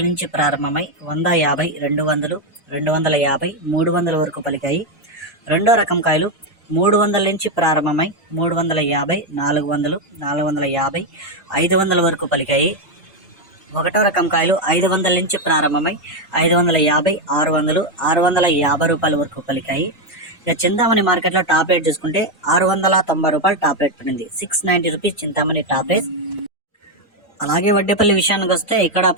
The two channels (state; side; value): normal; both; correlation 0.05